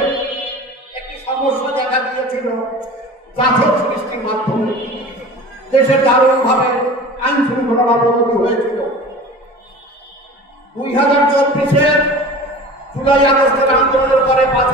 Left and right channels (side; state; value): both; normal; correlation 0.38